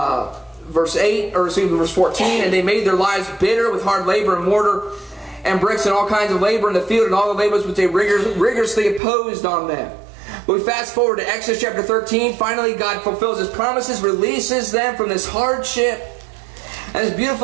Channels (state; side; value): drops out; left; at 9.0 s